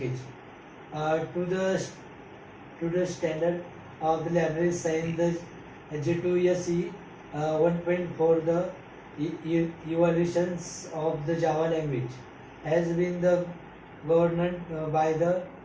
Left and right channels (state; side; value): identical; both; correlation 1.00